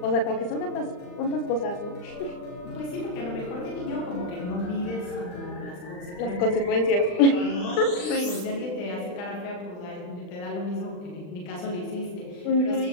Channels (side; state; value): right; late; 39 ms